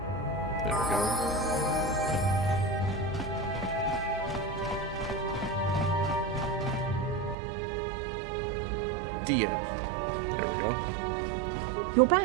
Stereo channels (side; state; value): left; drops out; at 7.4 s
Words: There we go. Dia. There we go. You're